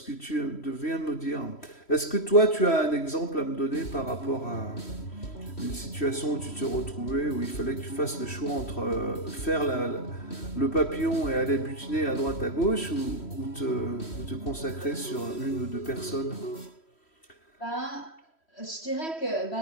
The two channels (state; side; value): late; right; 3.1 ms